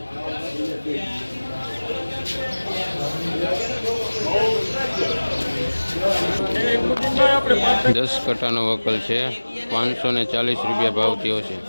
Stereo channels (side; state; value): both; inverted; correlation -1.00